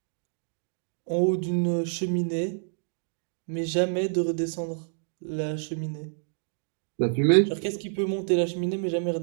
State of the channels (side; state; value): left; silent; digital silence